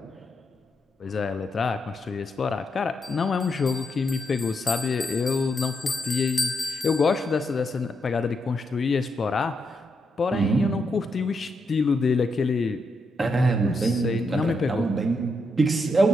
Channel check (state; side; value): normal; both; correlation 0.81